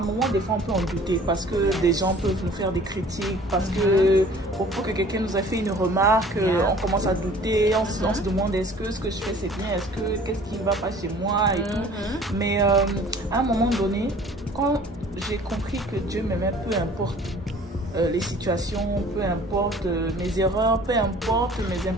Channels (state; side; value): normal; both; correlation 0.50